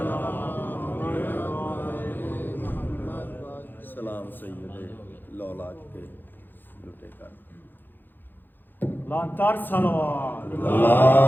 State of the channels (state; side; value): late; right; 0.092 ms